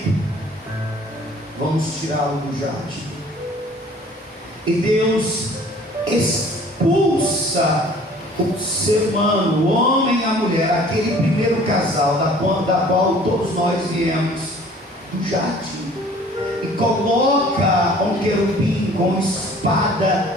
Vamos tirá-lo do jardim. E Deus expulsa o ser humano, o homem e a mulher, aquele primeiro casal da qual todos nós viemos, do jardim, e coloca um querubim com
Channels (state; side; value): normal; both; correlation 0.51